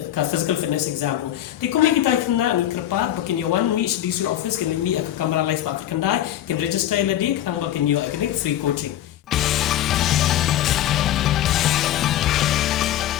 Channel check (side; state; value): right; quieter; 12.2 dB